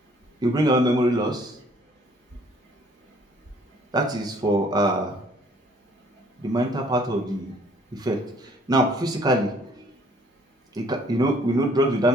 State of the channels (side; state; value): both; normal; correlation 0.60